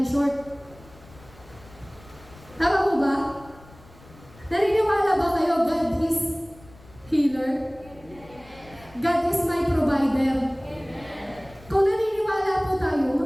short. Tama po ba? Naniniwala ba kayo God is healer? God is my provider. Kung naniniwala po tayo,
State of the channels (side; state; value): left; noise; rumble, 23 dB below the sound